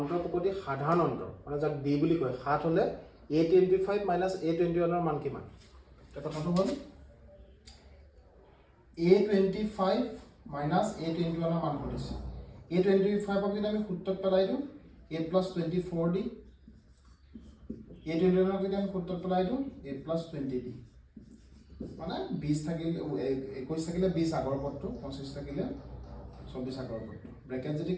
প্ৰকৃতিৰ সাধাৰণ অন্তৰ মানে যাক ডি বুলি কয় 7 হলে a25 minus a21 ৰ মান কিমান এটা কথাটো হ'ল a25 minus a21 ৰ মান কৰিছে a25 ক যদি আমি সূত্ৰত পেলাই দিওঁ a plus 24d a21 ক যদি আমি সূত্ৰত পেলাই দিওঁ a plus 20d মানে 20 থাকিলে 21 থাকিলে 20 আগৰ পদটো 25 থাকিলে 24 আগৰ পদটো ব্ৰেকেট যদি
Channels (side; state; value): both; identical; correlation 1.00